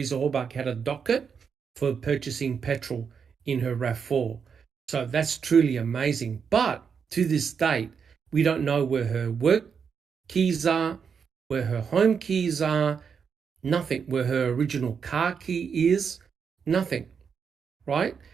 Horbach had a docket for purchasing petrol in her RAV4. So that's truly amazing. But to this date, we don't know where her work keys are, where her home keys are, nothing, where her original car key is, nothing, right?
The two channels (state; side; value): quieter; left; 6.5 dB